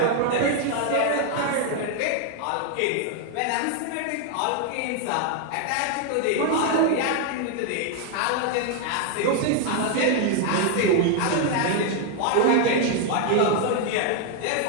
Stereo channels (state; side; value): different; both; correlation 0.00